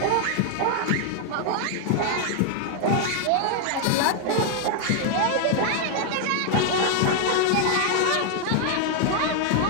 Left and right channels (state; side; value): different; both; correlation 0.00